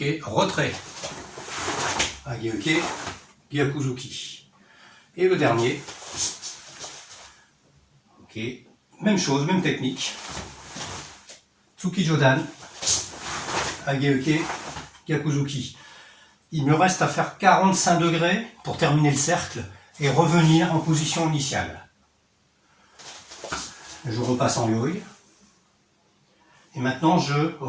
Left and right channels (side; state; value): both; identical; correlation 1.00